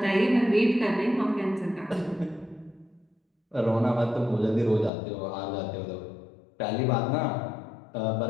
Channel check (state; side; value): drops out; right; at 4.9 s